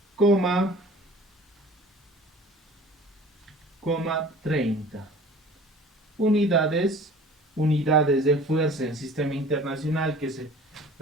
coma 30 unidades de fuerza en sistema internacional, que es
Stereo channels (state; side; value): normal; both; correlation 0.45